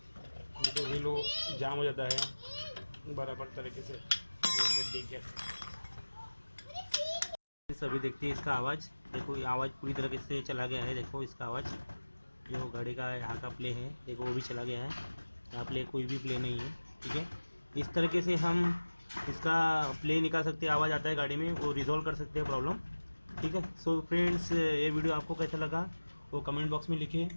तो व्हील जाम हो जाता है बराबर तरीके से रोटेट देके। सभी देखते हैं इसका आवाज़, देखो ये आवाज़ पूरी तरीके से चला गया है। देखो इसका आवाज़, जो गाड़ी का यहाँ का प्ले है देखो वो भी चला गया है। यहाँ प्ले कोई भी प्ले नहीं है। ठीक है, इस तरीके से हम इसका प्ले निकाल सकते हैं। आवाज़ आता है गाड़ी में, वो रिजॉल्व कर सकते हैं प्रॉब्लम। ठीक है, सो फ्रेंड्स, ये वीडियो आपको कैसा लगा वो कमेंट बॉक्स में लिखिए।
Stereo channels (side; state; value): both; inverted; correlation -1.00